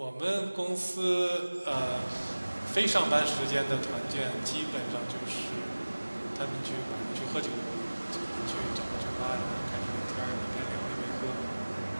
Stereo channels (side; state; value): both; inverted; correlation -1.00